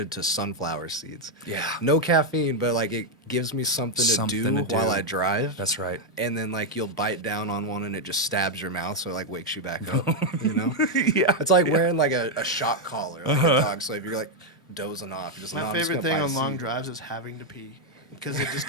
to sunflower seeds. Yeah. No caffeine, but like it gives me something to do while I drive. That's right. And then like you'll bite down on one and it just stabs your mouth, so it like wakes you back up. You know? Yeah. It's like wearing like a shock collar, like a dog. So if you're like dozing off, you're just My "No, I'm just favorite gonna thing bite on a long seed." drives is having to pee because it just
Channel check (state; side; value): normal; both; correlation 0.01